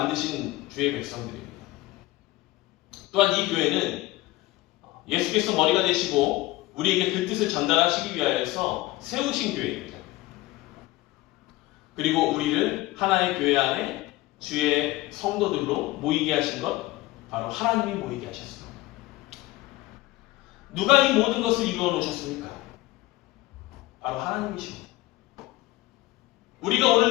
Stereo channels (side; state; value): right; quieter; 18.3 dB